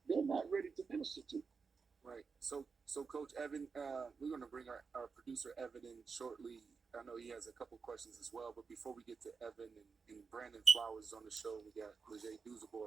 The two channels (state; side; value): quieter; left; 5.2 dB